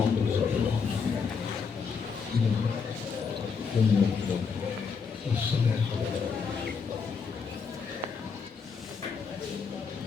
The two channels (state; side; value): quieter; right; 5.6 dB